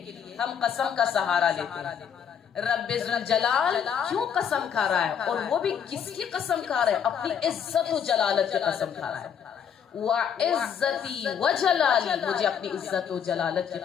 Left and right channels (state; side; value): quieter; right; 7.8 dB